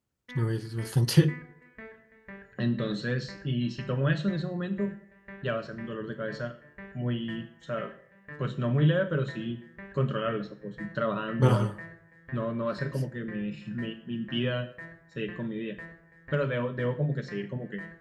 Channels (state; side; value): identical; both; correlation 1.00